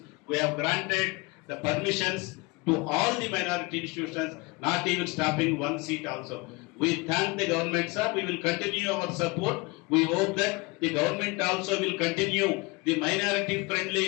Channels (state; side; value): quieter; right; 25.5 dB